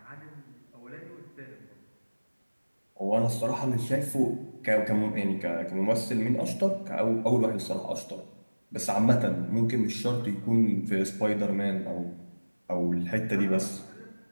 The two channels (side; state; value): both; inverted; correlation -1.00